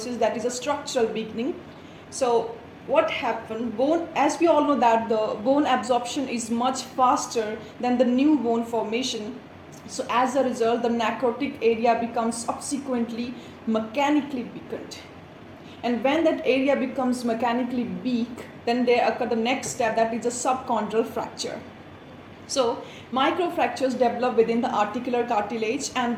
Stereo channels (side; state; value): both; identical; correlation 1.00